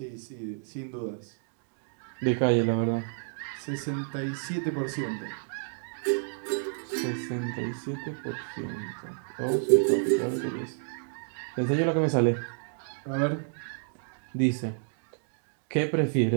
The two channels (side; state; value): left; silent; digital silence